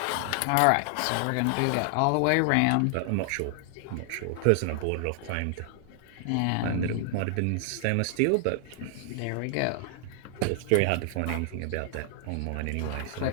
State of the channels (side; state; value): both; different; correlation 0.00